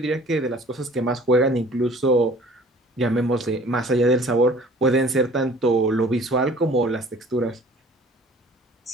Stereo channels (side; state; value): both; normal; correlation 0.50